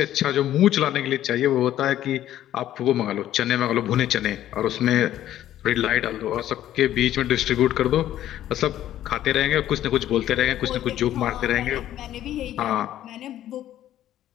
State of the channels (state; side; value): quieter; right; 12.4 dB